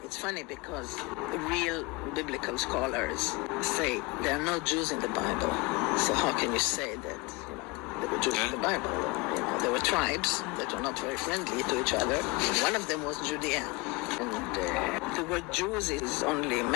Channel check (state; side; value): quieter; right; 25.9 dB